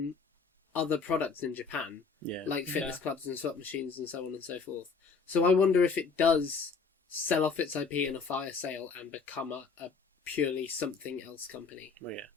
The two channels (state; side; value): quieter; right; 5.1 dB